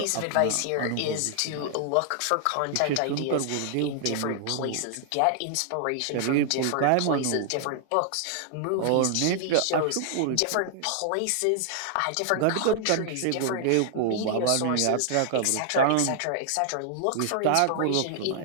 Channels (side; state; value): both; different; correlation 0.00